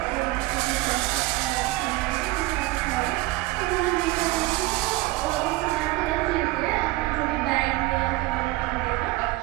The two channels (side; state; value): left; quieter; 19.8 dB